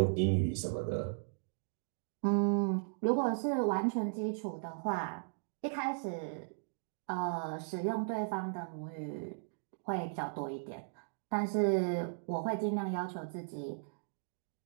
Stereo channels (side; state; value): left; silent; digital silence